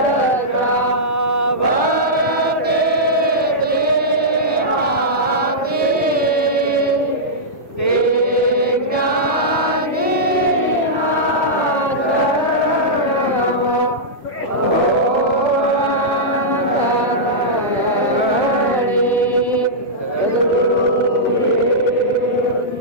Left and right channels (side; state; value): both; normal; correlation -0.12